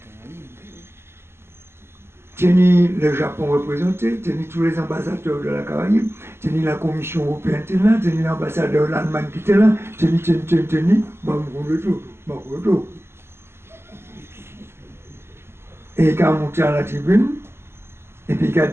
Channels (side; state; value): left; late; 0.12 ms